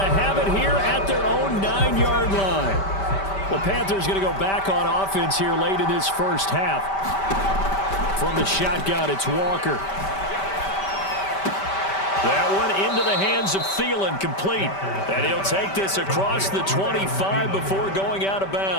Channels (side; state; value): right; late; 5.1 ms